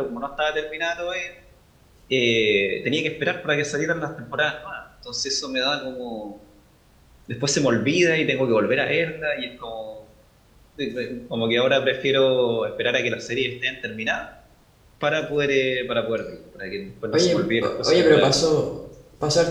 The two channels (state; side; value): identical; both; correlation 1.00